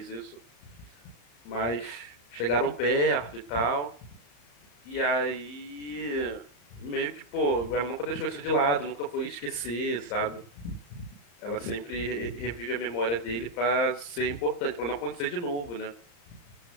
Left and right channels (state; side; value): late; right; 35 ms